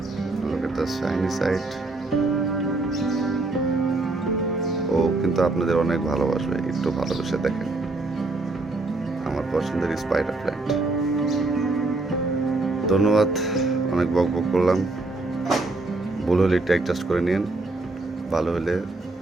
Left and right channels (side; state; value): left; quieter; 3.1 dB